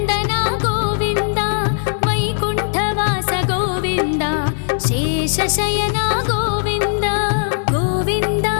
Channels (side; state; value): right; silent; digital silence